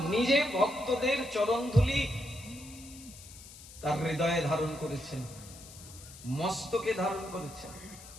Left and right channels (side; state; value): left; noise; hiss, 17 dB below the sound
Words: নিজে ভক্তদের চরণ ধুলি তার হৃদয়ে ধারণ করেছেন, মস্তকে ধারণ করেছেন।